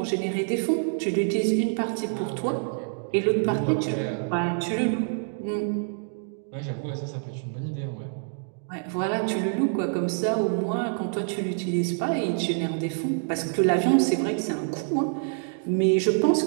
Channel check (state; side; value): silent; left; 61 dB below the other